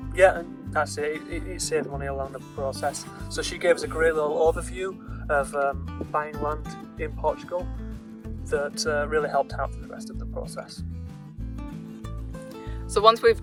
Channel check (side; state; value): both; identical; correlation 1.00